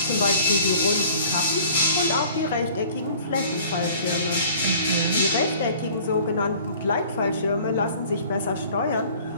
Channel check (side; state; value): both; inverted; correlation -0.50